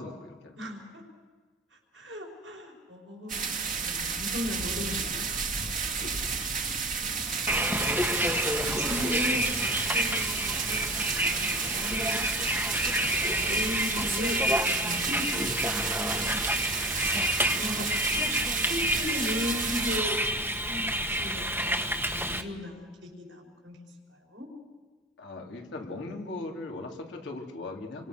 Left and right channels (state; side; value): normal; both; correlation 0.34